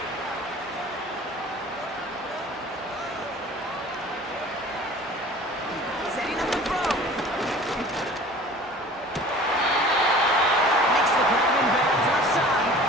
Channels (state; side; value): normal; both; correlation 0.45